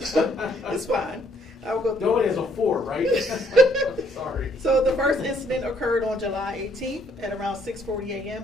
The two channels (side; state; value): both; normal; correlation 0.66